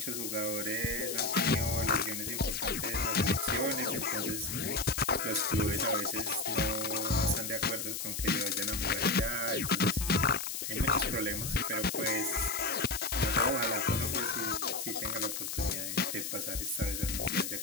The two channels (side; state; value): left; noise; hiss, 4 dB below the sound